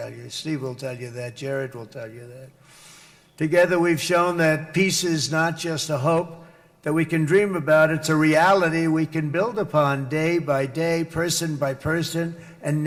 you. Steve will tell you that. Jared will tell you that. Together, we've shown that peace is not just a hope that we can dream about. It's a reality we can build upon day by day, person by person, and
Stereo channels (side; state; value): both; identical; correlation 1.00